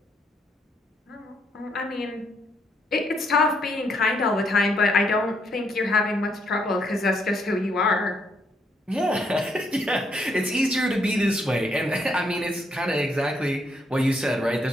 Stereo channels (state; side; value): normal; both; correlation 0.73